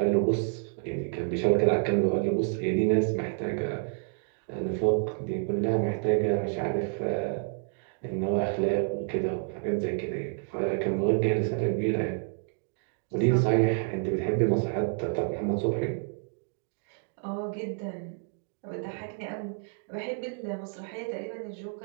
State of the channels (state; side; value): silent; left; 58 dB below the other